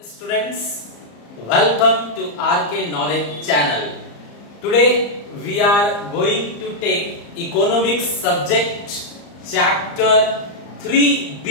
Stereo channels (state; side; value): late; right; 34 ms